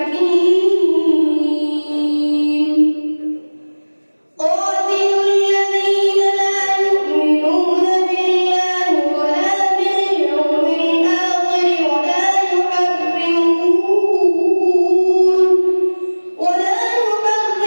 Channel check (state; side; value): inverted; both; correlation -1.00